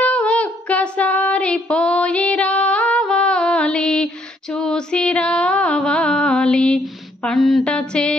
ఒక్కసారి పోయి రావాలి, చూసి రావాలి, పంట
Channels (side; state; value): both; normal; correlation 0.69